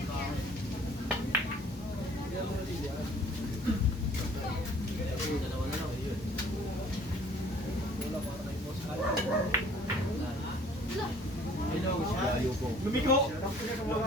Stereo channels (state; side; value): normal; both; correlation 0.54